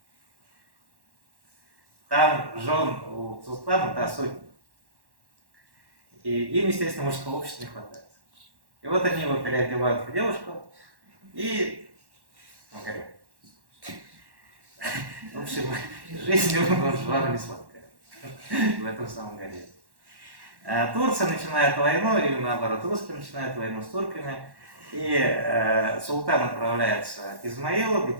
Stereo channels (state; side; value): late; left; 1.1 ms